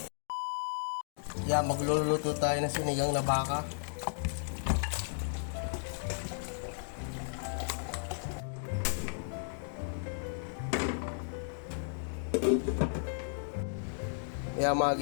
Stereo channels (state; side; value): silent; right; digital silence